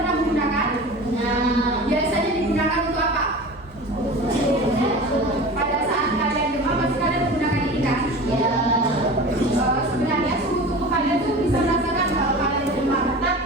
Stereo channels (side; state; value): both; normal; correlation 0.35